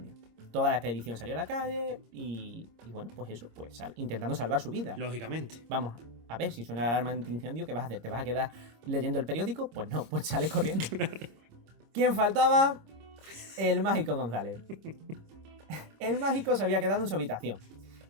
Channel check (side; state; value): left; late; 26 ms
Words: Toda la expedición salió a la calle y bueno, pues eso, pues intentando salvar su vida. Lógicamente. Vamos, a ver, si suena la alarma antiincendio, ¿qué vas a hacer? ¿Te vas a quedar leyendo el periódico? Pues no, pues sales corriendo. ¿Quién faltaba? El mágico González. El mágico se había quedado en su habitación.